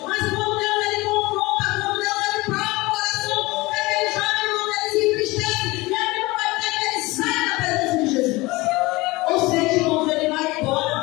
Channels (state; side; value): quieter; right; 21.8 dB